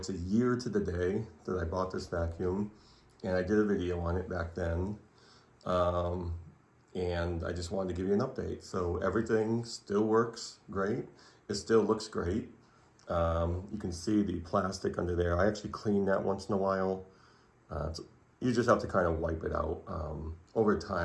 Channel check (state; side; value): identical; both; correlation 1.00